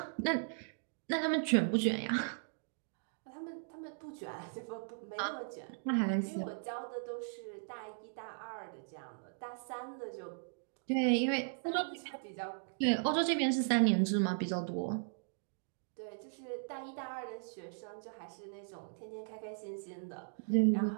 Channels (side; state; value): left; silent; digital silence